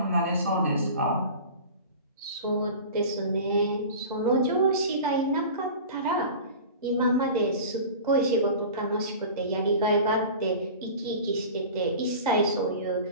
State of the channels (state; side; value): inverted; both; correlation -0.37